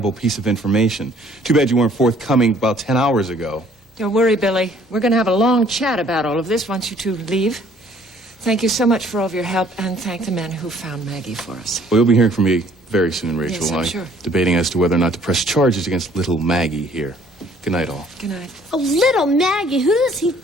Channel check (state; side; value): normal; both; correlation 0.59